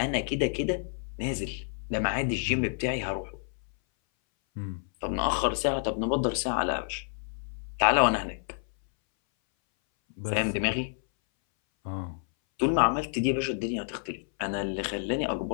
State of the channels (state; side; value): silent; right; 58 dB below the other